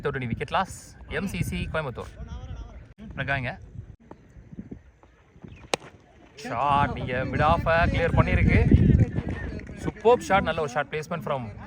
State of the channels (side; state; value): both; identical; correlation 1.00